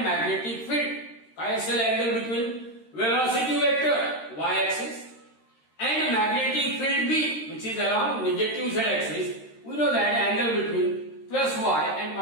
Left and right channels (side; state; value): right; late; 13 ms